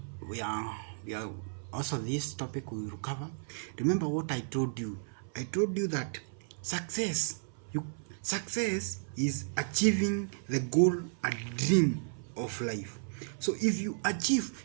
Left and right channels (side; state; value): left; silent; 55 dB below the other